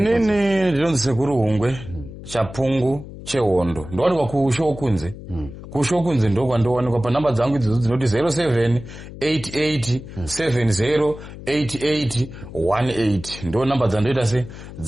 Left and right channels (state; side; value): noise; left; hum, 14 dB below the sound